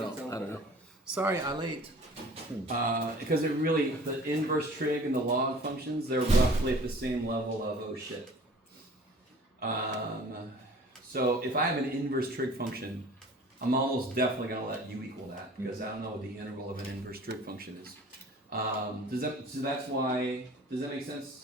know. Sorry, ilate. Because it really the inverse trig and the log functions they're roughly at the same level of oh shit. So if I have an inverse trig function, I'm almost definitely going to let u equal that because I don't know what the integral of an inverse trig function is. So that's why, does that make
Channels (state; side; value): normal; both; correlation 0.47